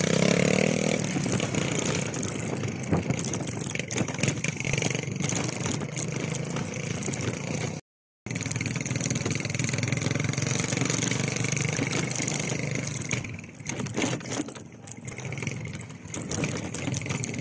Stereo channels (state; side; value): identical; both; correlation 1.00